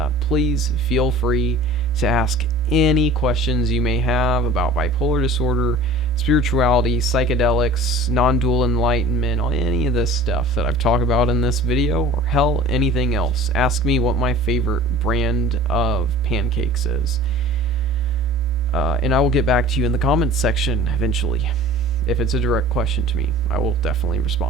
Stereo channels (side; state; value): both; normal; correlation 0.43